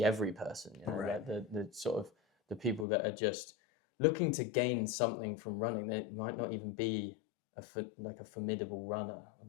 every person, like the sort of the people that are just looking to gain something from running. They might not even be a formidable runner, or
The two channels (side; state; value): right; drops out; at 2.9 s